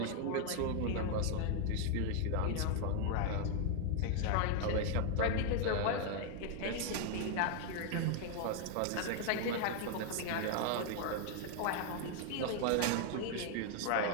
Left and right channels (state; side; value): different; both; correlation 0.01